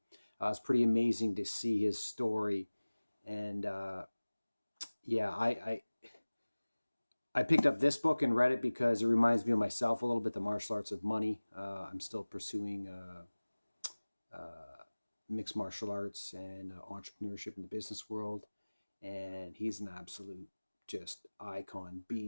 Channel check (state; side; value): inverted; both; correlation -1.00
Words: It's pretty amazing to see his story. And yeah, I picked up this book and read it because it reminds me of myself a little bit, The Martial Arts of Money. I'm still pursuing mixed martial arts and entrepreneurship in the business world. And he's an absolute just icon